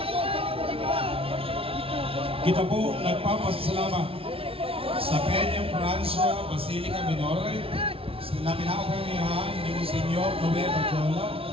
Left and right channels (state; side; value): late; left; 0.27 ms